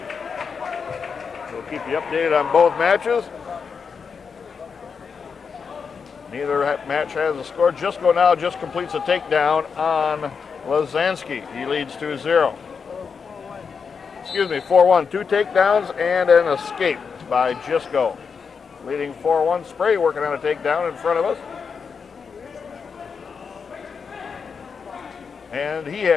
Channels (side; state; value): right; quieter; 5.8 dB